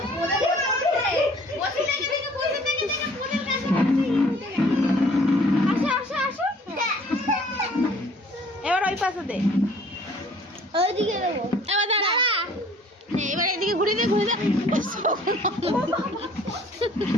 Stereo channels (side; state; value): both; normal; correlation 0.54